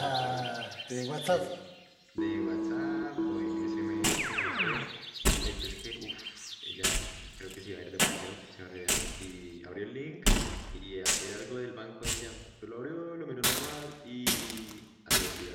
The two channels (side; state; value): both; identical; correlation 1.00